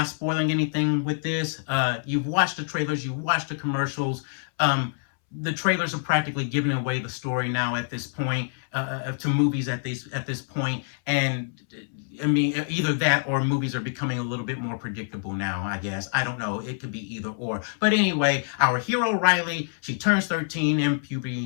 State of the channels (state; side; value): silent; right; 61 dB below the other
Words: spoiling anything with this. You've watched the trailers, you've watched the commercials. The trailers are practically giving away the story now at this point, to movies at this point, and I mean, either that or movies are becoming a little bit more predictable now, I guess. I don't know. It could be either or. But anyway, our hero Riley, she turns 13 and